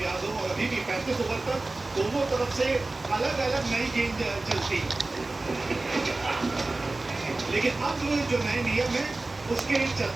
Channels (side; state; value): left; quieter; 3.2 dB